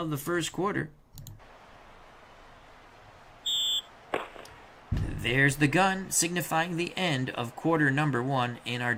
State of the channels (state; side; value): identical; both; correlation 1.00